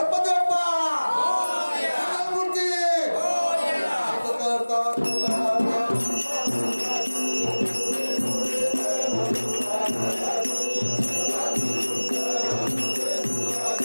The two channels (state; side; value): inverted; both; correlation -1.00